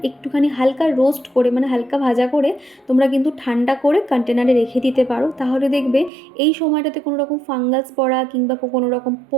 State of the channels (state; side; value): drops out; left; at 6.1 s